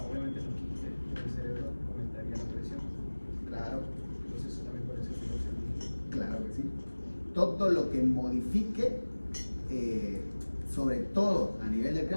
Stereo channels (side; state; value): both; inverted; correlation -1.00